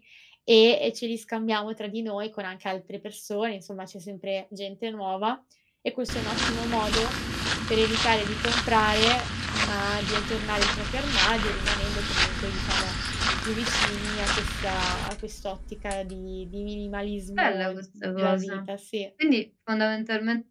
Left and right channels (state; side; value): identical; both; correlation 1.00